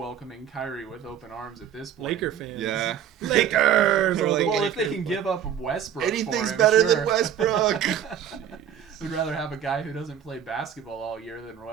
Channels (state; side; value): quieter; left; 9.2 dB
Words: Kyrie with open arms at this point. Laker fans. Yeah. Lakers! They're like, Well, if they can give up Westbrook anything's for him, better sure. than Westbrook. We'd rather have a guy who doesn't play basketball all year than